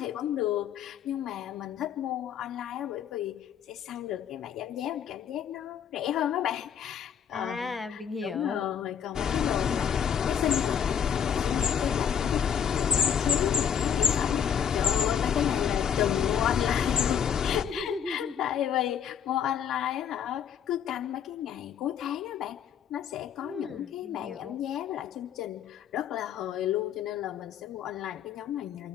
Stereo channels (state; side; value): quieter; right; 8.3 dB